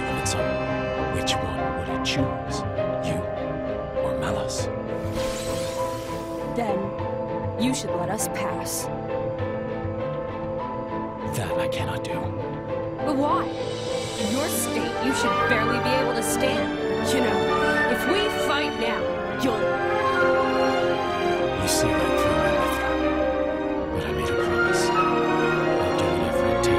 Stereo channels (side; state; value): both; identical; correlation 1.00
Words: of its own, which one would it choose? You or Malos? Then, you should let us pass. That I cannot do. But why? In your state, you should barely be able to stand. You know, if we fight now, you'll... You see right through my Mithra. But I made a promise. I'll do whatever it